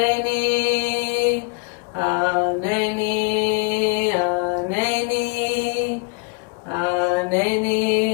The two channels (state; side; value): quieter; right; 32.0 dB